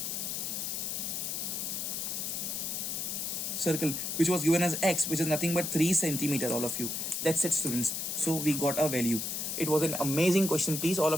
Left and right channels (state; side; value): noise; left; hiss, 2 dB below the sound